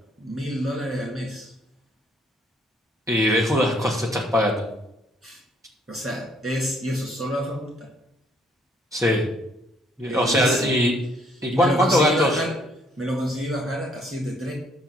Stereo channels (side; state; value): both; normal; correlation 0.66